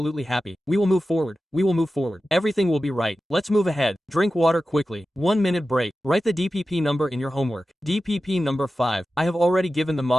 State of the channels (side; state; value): both; normal; correlation 0.93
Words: happy. We will move forward. Everything will be right. Let's move ahead. Drink water quickly. 1 minute break. Write the DPP number in your homework. DPP number 5. I have already given the